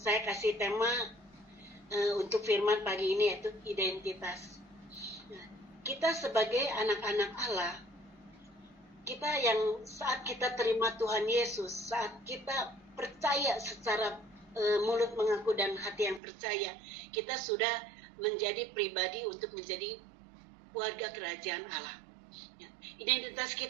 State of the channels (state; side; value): drops out; left; at 16.2 s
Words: kasih tema untuk firman pagi ini yaitu identitas. Kita sebagai anak-anak Allah, kita yang saat kita terima Tuhan Yesus, saat kita percaya secara mulut mengaku dan hati yang percaya, kita sudah menjadi pribadi untuk menjadi warga kerajaan Allah. Ya. Identitas